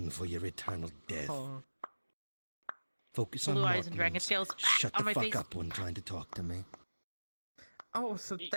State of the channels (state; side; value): inverted; both; correlation -1.00